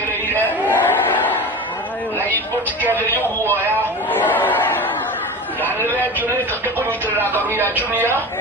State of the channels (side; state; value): both; normal; correlation 0.30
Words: na ipotikere y'ubuoya na nilejune kakunyitirira ngaru ya junior